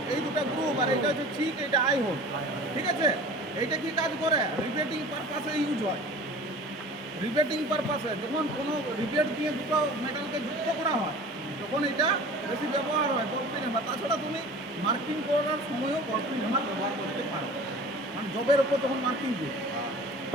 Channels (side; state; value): both; normal; correlation 0.41